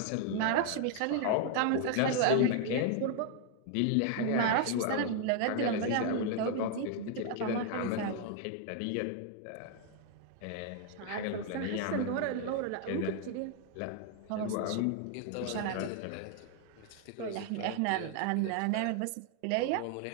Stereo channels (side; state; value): both; different; correlation 0.00